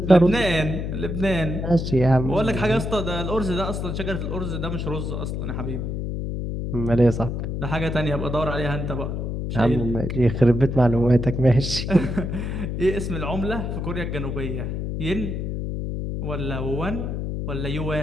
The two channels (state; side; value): noise; left; hum, 3 dB below the sound